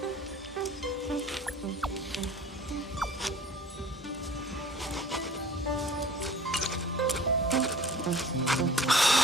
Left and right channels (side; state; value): both; normal; correlation 0.46